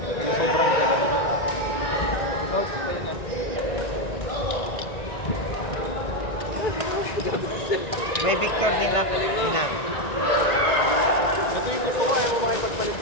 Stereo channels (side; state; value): right; late; 1.9 ms